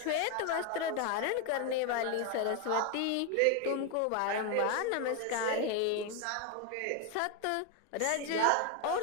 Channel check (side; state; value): both; different; correlation 0.01